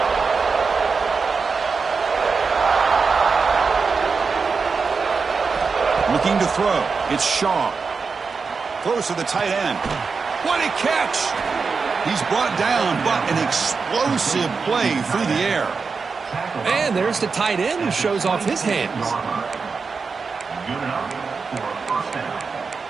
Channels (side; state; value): left; quieter; 4.9 dB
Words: Looking to throw. It's Shaw. Throws to the tight end. What a catch! He's brought down, but an explosive play through the air. And there's the tight end who shows off his hands.